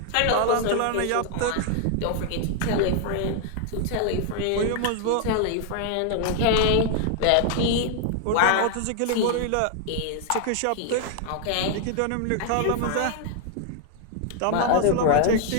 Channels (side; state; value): both; different; correlation 0.00